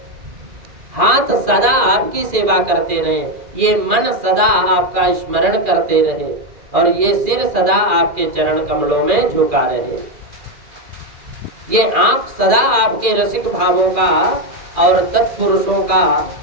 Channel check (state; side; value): late; left; 2.4 ms